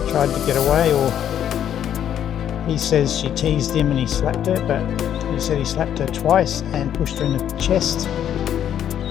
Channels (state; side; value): quieter; right; 9.9 dB